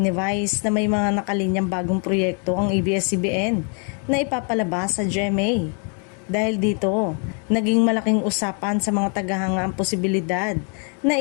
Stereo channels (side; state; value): right; quieter; 39.8 dB